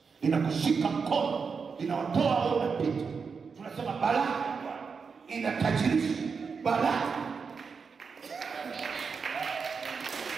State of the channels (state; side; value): quieter; left; 5.5 dB